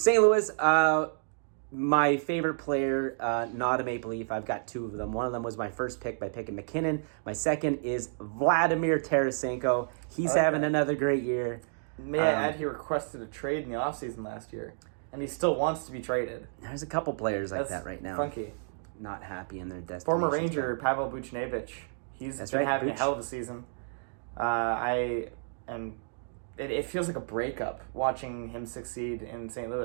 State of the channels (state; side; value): silent; left; digital silence